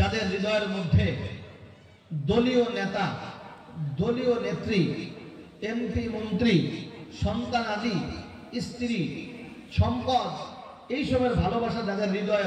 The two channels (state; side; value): identical; both; correlation 1.00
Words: হৃদয়ের মধ্যে দলীয় নেতা, দলীয় নেত্রী, এমপি, মন্ত্রী, সন্তান আদি, স্ত্রী, সম্পদ, এইসবের ভালোবাসা যাদের হৃদয়ে